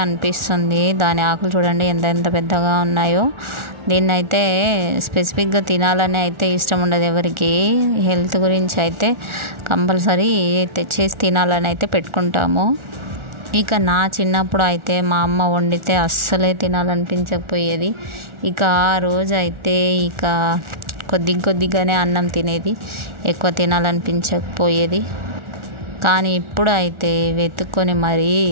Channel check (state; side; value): late; left; 1.4 ms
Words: అనిపిస్తుంది. దాని ఆకులు చూడండి ఎంత ఎంత పెద్దగా ఉన్నాయో. దీన్ని అయితే స్పెసిఫిక్గా తినాలని అయితే ఇష్టం ఉండదు ఎవరికి. హెల్త్ గురించి అయితే కంపల్సరీ తెచ్చేసి తినాలని అయితే పెట్టుకుంటాము. ఇక నా చిన్నప్పుడు అయితే మా అమ్మ వండితే అస్సలే తినాలనిపించకపోయేది. ఇక ఆ రోజు అయితే కొద్దిగానే అన్నం తినేది, ఎక్కువ తినాలనిపించకపోయేది. కానీ ఇప్పుడు అయితే వెతుక్కొని మరీ